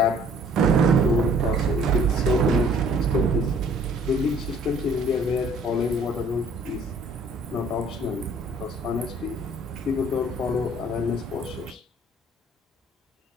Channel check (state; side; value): normal; both; correlation 0.57